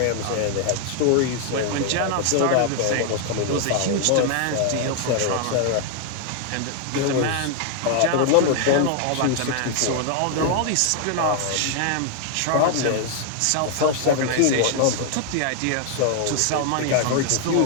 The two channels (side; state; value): both; different; correlation 0.00